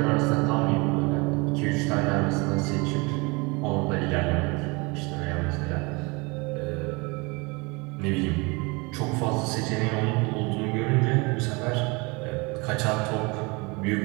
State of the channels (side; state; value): left; quieter; 27.5 dB